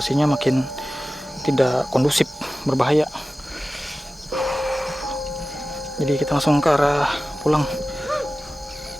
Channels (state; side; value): normal; both; correlation 0.95